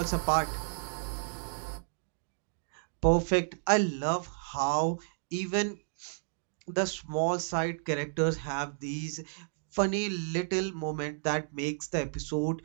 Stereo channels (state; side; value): silent; left; digital silence